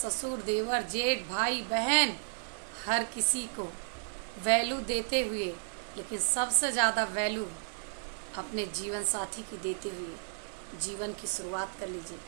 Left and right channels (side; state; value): left; silent; digital silence